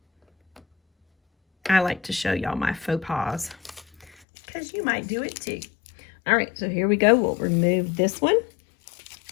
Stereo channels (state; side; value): drops out; right; at 4.1 s